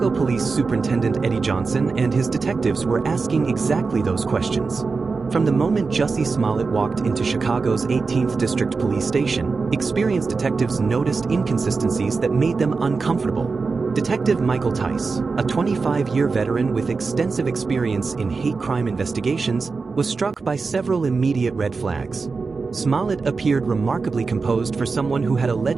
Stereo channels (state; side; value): quieter; left; 4.4 dB